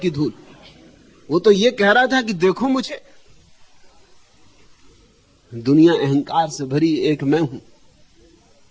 धूल। वो तो ये कह रहा था कि देखो मुझे। दुनिया अहंकार से भरी, एक मैं हूं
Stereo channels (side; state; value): both; identical; correlation 1.00